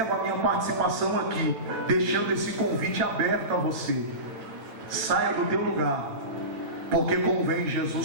a minha participação aqui, deixando esse convite aberto a você. Saia do teu lugar, porque convém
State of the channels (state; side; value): late; left; 8.9 ms